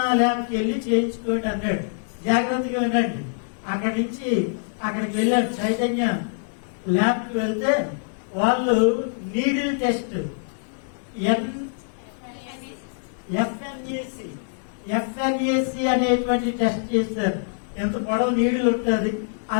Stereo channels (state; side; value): silent; right; digital silence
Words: ల్యాబ్కి వెళ్ళి చేయించుకోండి అన్నాడు. జాగ్రత్తగా వినండి. అక్కడి నుంచి అక్కడికి వెళ్ళాడు, చైతన్య ల్యాబ్కి వెళ్తే వాళ్ళు నీడిల్ టెస్ట్ ఎఫ్ఎన్ఏసి అనేటువంటి టెస్ట్ చేశారు. ఎంత పొడవు నీడిల్ ఉంటుంది,